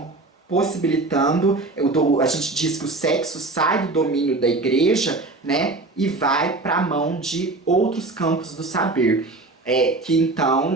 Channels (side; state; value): left; quieter; 3.2 dB